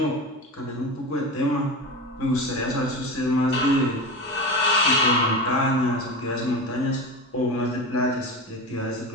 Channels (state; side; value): normal; both; correlation 0.25